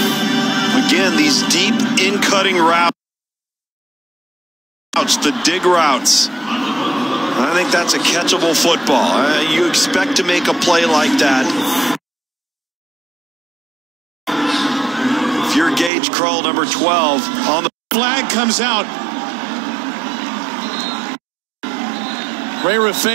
Again, these deep in-cutting routes, the dig routes, I think that's a catchable football. You expect to make a play like that. If you're Gage Krull, number 12, on the flag comes out. Ray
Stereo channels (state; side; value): drops out; left; at 15.9 s